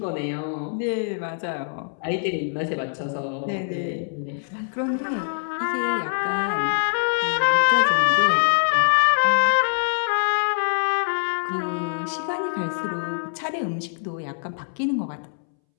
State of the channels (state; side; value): silent; right; 63 dB below the other